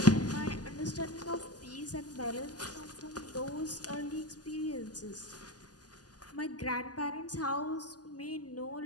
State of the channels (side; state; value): right; late; 0.68 ms